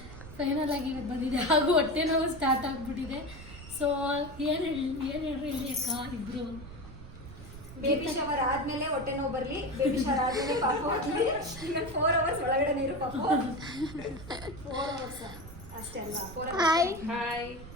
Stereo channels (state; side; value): noise; right; rumble, 15 dB below the sound